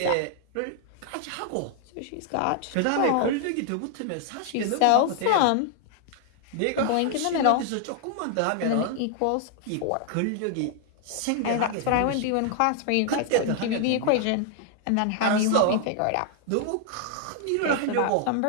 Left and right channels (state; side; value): different; both; correlation 0.00